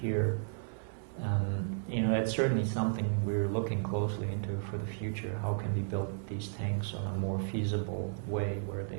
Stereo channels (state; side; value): silent; left; 55 dB below the other